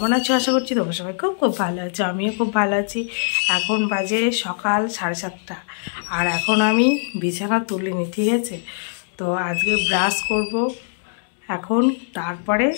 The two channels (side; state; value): right; silent; digital silence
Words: আছো? আশা করছি তোমরা সবাই খুব খুব ভালো আছো। আমিও খুব ভালো আছি। এখন বাজে সকাল 7:30 আর এখন আমি বিছানা তুলিনি, ঠিক আছে? তো আজকে ব্রাশ করব এখন, তারপরে